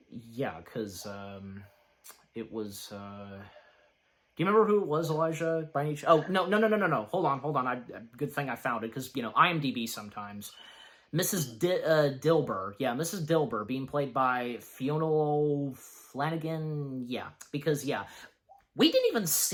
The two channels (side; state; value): both; identical; correlation 1.00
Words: because, it was, do you remember who it was, Elijah, by any chance? Oh, no, hold on, good thing I found it, because, IMDb sometimes. Mrs. Dilber. Yeah, Mrs. Dilber, being played by Fiona Flanagan. Yeah, because, we didn't even